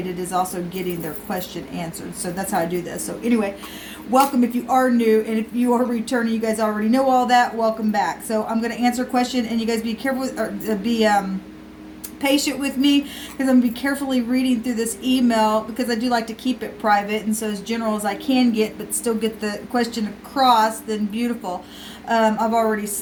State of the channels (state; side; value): identical; both; correlation 1.00